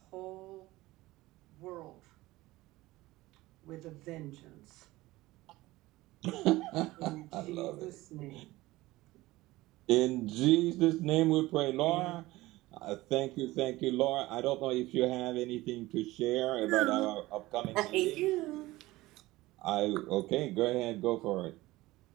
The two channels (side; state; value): left; quieter; 18.7 dB